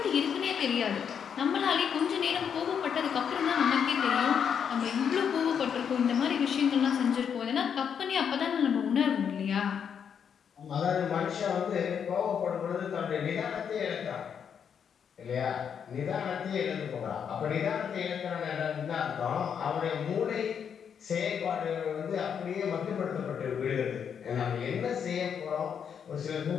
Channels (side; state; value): right; quieter; 7.6 dB